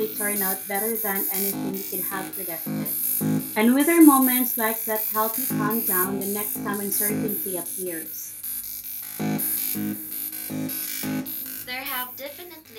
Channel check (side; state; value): both; identical; correlation 1.00